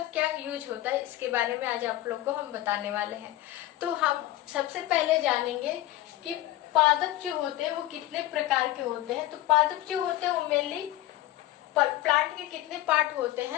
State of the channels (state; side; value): quieter; right; 15.6 dB